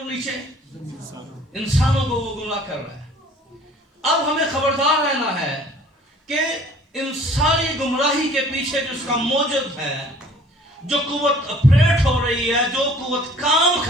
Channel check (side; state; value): both; normal; correlation 0.53